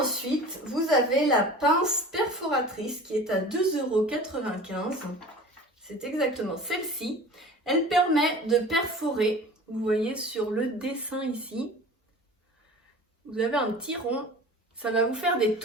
vous avez la pince perforatrice qui est à 2,95 €. C'est exactement celle-ci. Elle permet de perforer. Vous voyez sur le dessin ici, vous avez un petit rond, ça va vous faire des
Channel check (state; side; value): normal; both; correlation 0.40